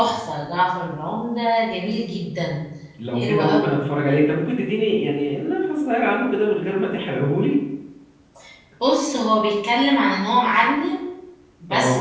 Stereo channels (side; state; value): both; identical; correlation 1.00